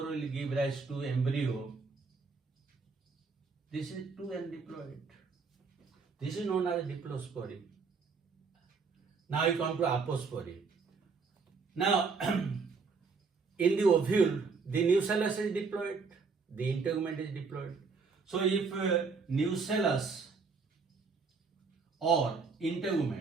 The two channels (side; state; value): left; quieter; 4.8 dB